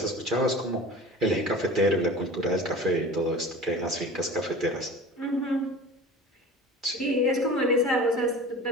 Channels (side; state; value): both; normal; correlation 0.38